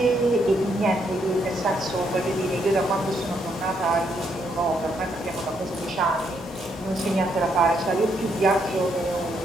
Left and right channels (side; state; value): both; normal; correlation 0.75